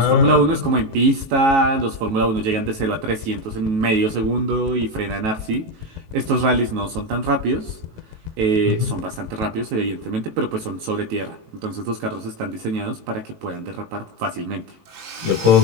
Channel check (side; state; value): left; late; 19 ms